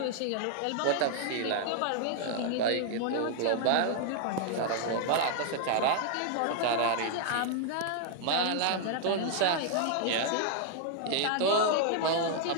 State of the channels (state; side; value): different; both; correlation 0.00